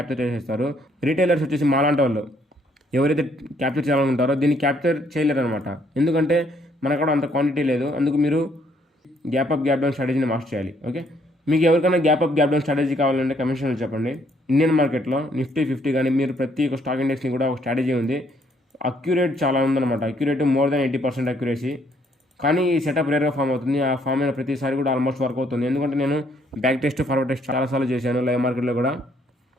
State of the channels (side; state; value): both; normal; correlation 0.68